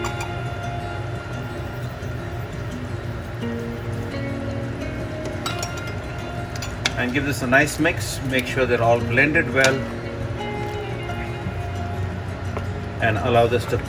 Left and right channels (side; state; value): both; identical; correlation 1.00